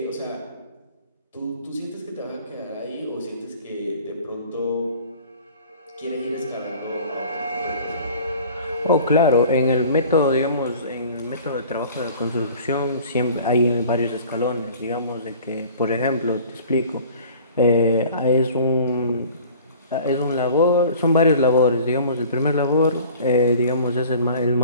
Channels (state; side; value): inverted; both; correlation -0.47